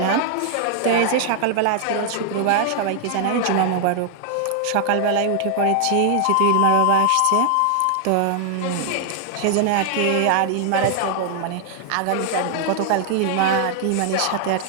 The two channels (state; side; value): different; both; correlation 0.00